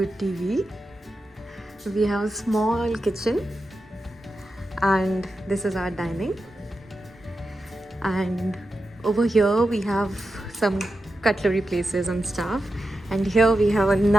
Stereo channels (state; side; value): normal; both; correlation 0.90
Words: TV. We have a small kitchen, and this is our dining. And over here we have some cutlery places and stuff. And here we have a